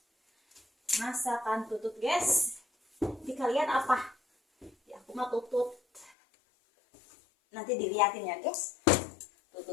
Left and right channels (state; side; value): drops out; right; at 6.1 s